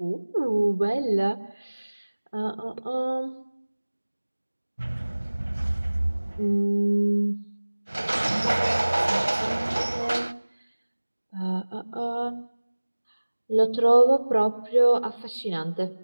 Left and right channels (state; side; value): inverted; both; correlation -1.00